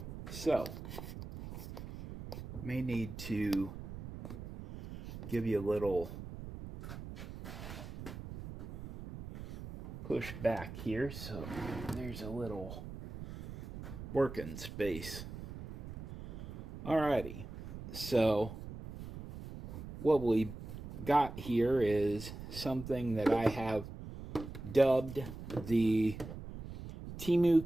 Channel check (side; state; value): right; noise; rumble, 10 dB below the sound